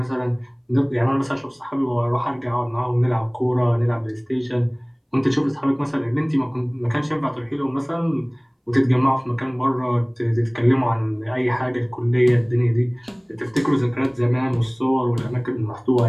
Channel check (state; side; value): identical; both; correlation 1.00